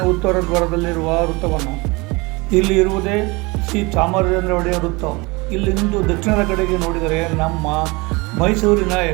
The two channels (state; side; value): quieter; left; 25.3 dB